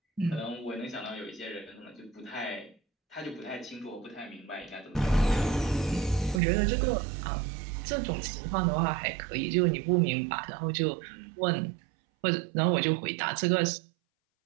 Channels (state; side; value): drops out; left; at 6.4 s